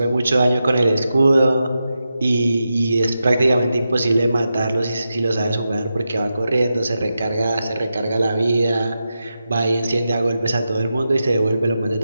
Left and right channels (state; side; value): inverted; both; correlation -0.89